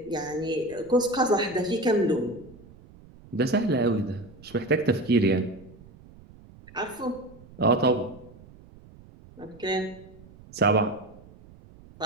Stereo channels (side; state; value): right; noise; rumble, 22 dB below the sound